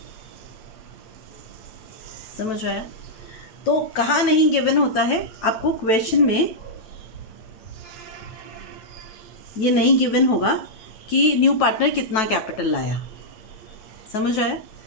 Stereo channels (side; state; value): right; late; 9.2 ms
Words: समझ आया? तो कहाँ नहीं गिवन होता है आपको? क्वेश्चन में ये नहीं गिवन होगा कि न्यू पार्टनर कितना कैपिटल लाया। समझ आया?